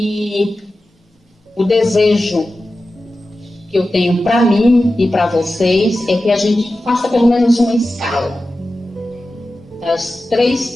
o desejo que eu tenho para mim e para vocês é que a gente faça pelo menos uma escala das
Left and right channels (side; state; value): both; normal; correlation 0.94